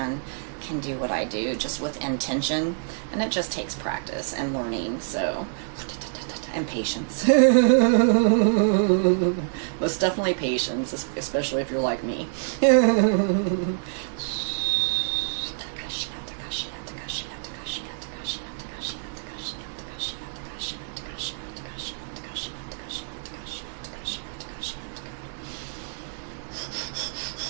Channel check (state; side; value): silent; left; digital silence